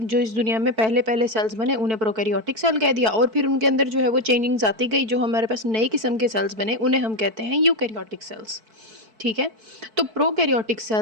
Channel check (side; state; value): left; late; 4.5 ms